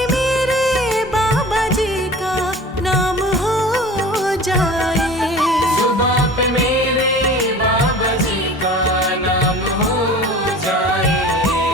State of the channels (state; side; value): normal; both; correlation 0.40